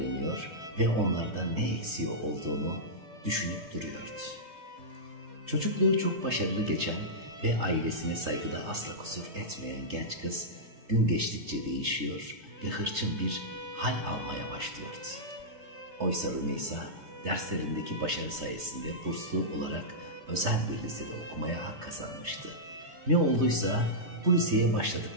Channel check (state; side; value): late; left; 3.3 ms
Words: ve onlardan ne eksiği olduğunu düşünüp duruyordu. Çocukluğu çok başarılı geçen ve ailesine saygıda asla kusur etmeyen genç kız gün geçtikçe değişiyor ve hırçın bir hal almaya başlıyordu. Oysa Rümeysa derslerindeki başarı sayesinde burslu olarak özel bir lisede okumaya hak kazanmıştı. Ne olduysa bu liseye